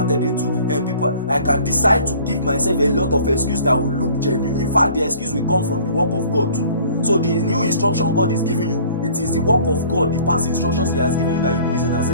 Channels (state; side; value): inverted; both; correlation -0.51